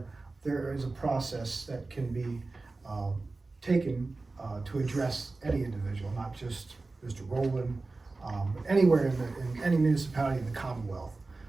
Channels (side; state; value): left; quieter; 3.5 dB